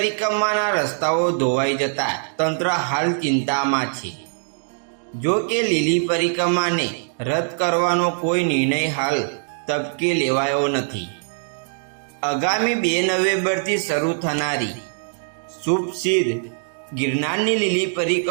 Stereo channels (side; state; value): left; silent; digital silence